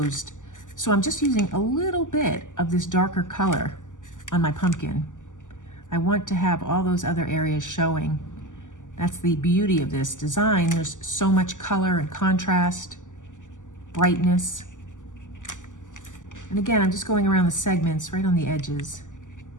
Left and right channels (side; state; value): right; late; 0.87 ms